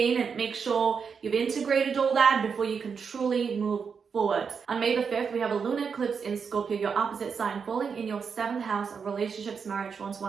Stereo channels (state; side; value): quieter; left; 6.0 dB